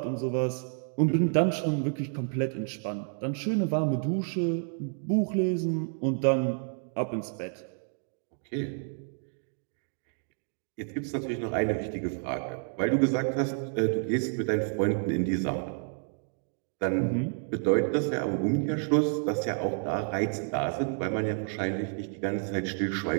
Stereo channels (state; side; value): silent; left; 57 dB below the other